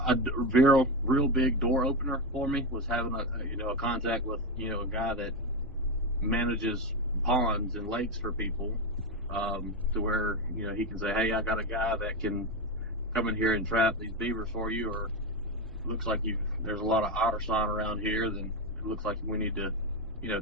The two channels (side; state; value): both; normal; correlation 0.12